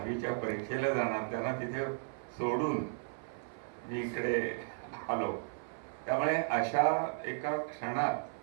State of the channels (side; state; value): left; silent; 54 dB below the other